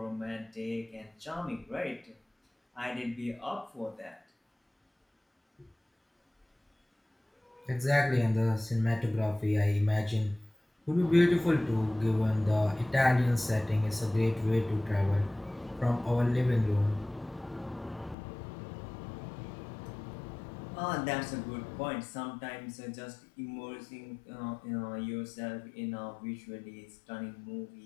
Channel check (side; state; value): right; drops out; at 18.2 s